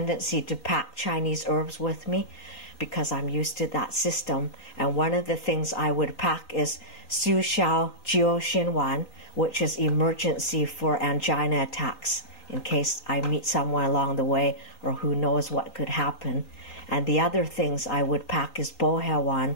to pack Chinese herbs with me because I'm used to that system. And one of the things I would pack is Su Xiao Jiu Xin Wan, which is emergency for angina attacks, in case I meet someone along the way or who knows what could happen. And the other things I would pack is Bo Hao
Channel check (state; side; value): late; right; 3.9 ms